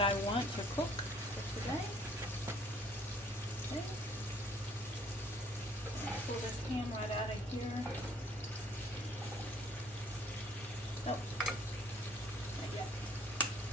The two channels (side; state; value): both; normal; correlation 0.59